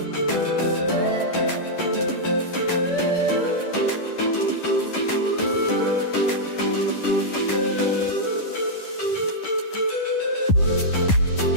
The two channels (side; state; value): right; late; 10 ms